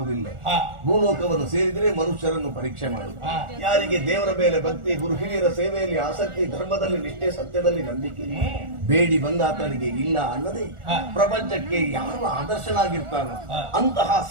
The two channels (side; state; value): left; late; 1.4 ms